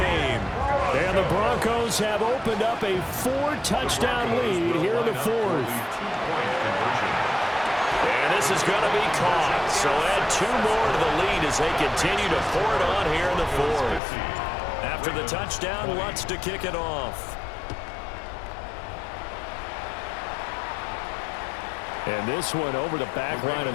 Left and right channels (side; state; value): right; drops out; at 14.0 s